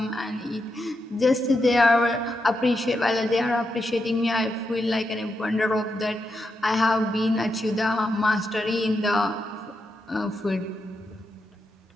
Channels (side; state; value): both; normal; correlation 0.85